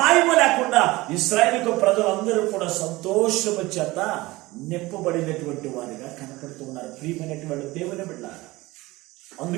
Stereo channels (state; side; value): quieter; left; 20.2 dB